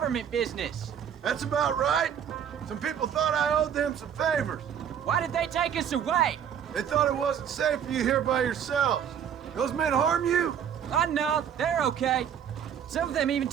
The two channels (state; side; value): quieter; left; 8.6 dB